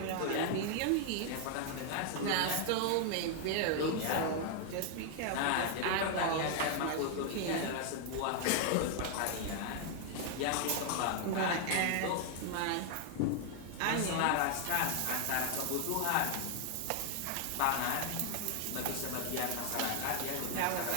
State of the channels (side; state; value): both; different; correlation 0.00